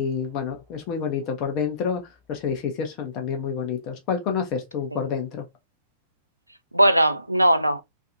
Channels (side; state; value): both; inverted; correlation -0.62